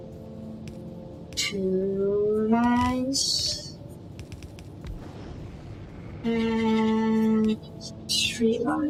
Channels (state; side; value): identical; both; correlation 1.00